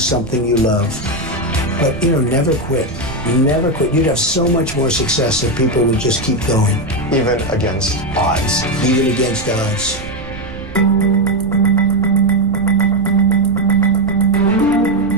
you love. But, never quit. Never quit. You'd have so much more success if people would just keep going. Even against odds. Even against odds.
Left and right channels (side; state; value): right; noise; rumble, 13 dB below the sound